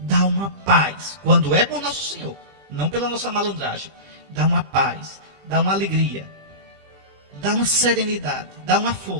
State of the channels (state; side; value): late; left; 20 ms